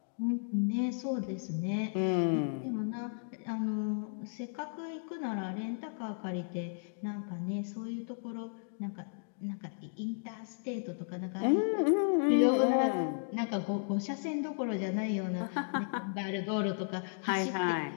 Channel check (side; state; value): right; silent; digital silence